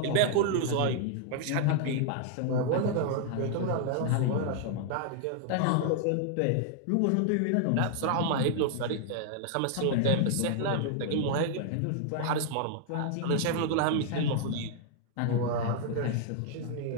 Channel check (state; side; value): different; both; correlation 0.00